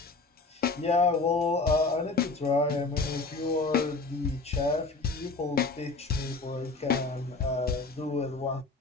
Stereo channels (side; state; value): right; quieter; 3.7 dB